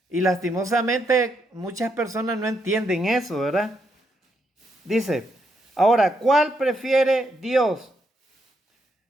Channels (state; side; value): normal; both; correlation 0.78